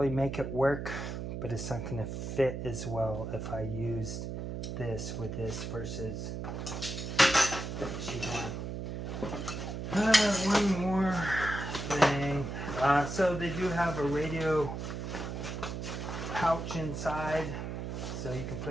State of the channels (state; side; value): noise; right; hum, 5 dB below the sound